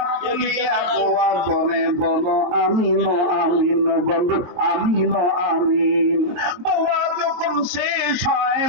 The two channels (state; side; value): late; left; 23 ms